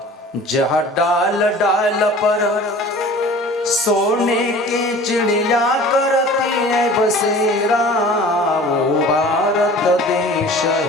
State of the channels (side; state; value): both; normal; correlation 0.43